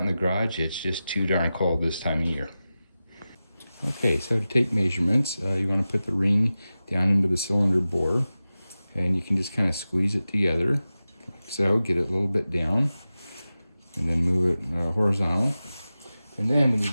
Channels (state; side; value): inverted; both; correlation -0.95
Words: the garage, it's just too darn cold this time of year. Okay, so to take measurements, you want to put the ring down into the cylinder bore. And you can just kind of squeeze it together. So get it a little bit down and then move it horizontal. And then we need